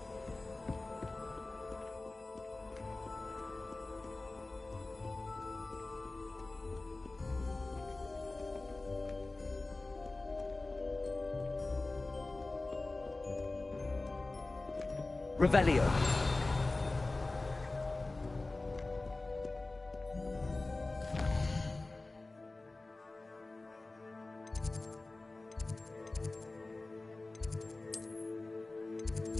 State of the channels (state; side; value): quieter; right; 3.1 dB